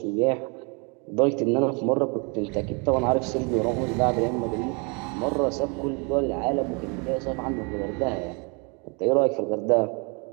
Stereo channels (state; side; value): quieter; left; 33.1 dB